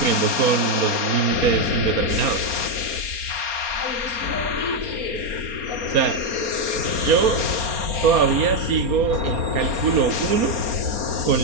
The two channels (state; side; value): late; left; 4.3 ms